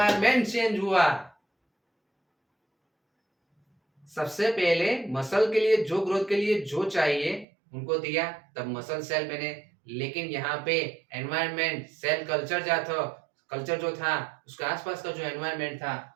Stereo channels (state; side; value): drops out; left; at 7.5 s